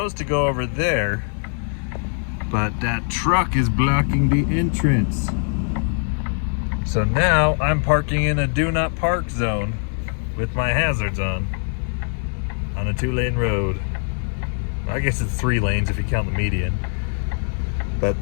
to go over there, but that truck is blocking the entrance. So now I'm parking in a do not park zone with my hazards on a 2-lane road. I guess it's 3 lanes if you count the median. But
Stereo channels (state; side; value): silent; right; 56 dB below the other